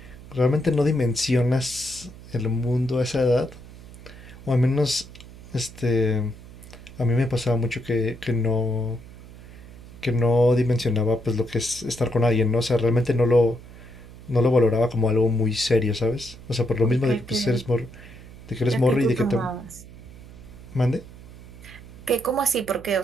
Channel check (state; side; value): noise; right; hum, 18 dB below the sound